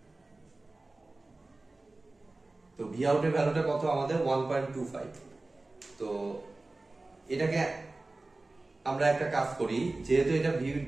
তো ভি আউটের ভ্যালুটা কত আমাদের 1.25। তো এটাকে আমরা একটা কাজ করি, যেহেতু এটা ভি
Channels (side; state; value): left; quieter; 3.1 dB